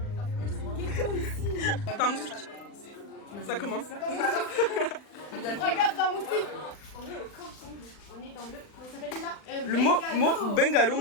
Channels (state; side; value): late; right; 39 ms